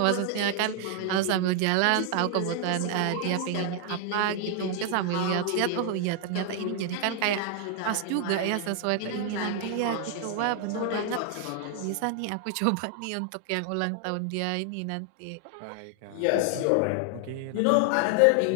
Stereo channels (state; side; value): different; both; correlation 0.00